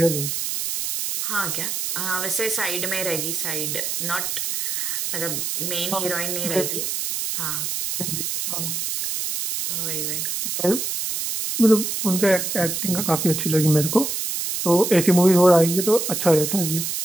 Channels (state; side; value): noise; right; hiss, 2 dB below the sound